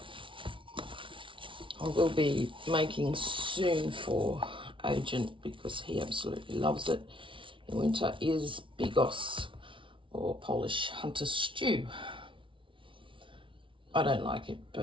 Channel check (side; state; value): left; late; 0.25 ms